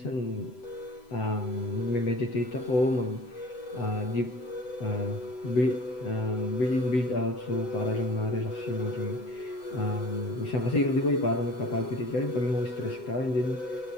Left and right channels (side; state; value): right; late; 7.9 ms